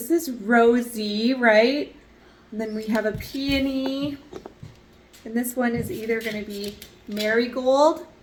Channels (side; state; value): both; identical; correlation 1.00